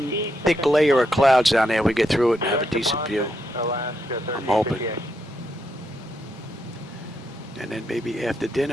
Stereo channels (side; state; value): both; normal; correlation 0.80